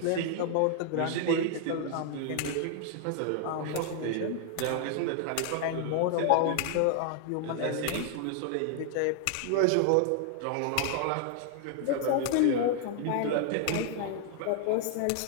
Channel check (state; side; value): different; both; correlation 0.00